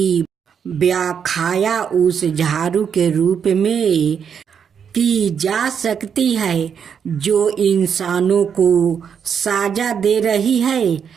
व्याख्या उस झाड़ू के रूप में की जा सकती है जो इंसानों को साजा दे रही है।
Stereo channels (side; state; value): left; quieter; 7.4 dB